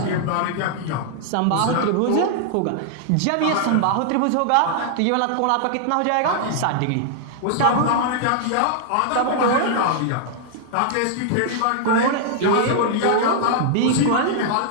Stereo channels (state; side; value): different; both; correlation -0.01